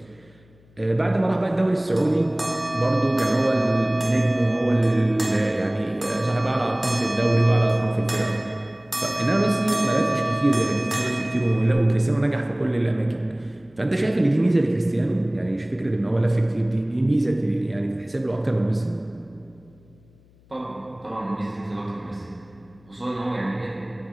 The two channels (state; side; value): noise; left; hum, 29 dB below the sound